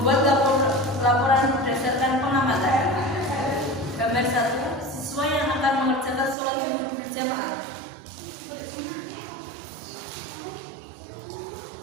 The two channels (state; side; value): drops out; left; at 6.4 s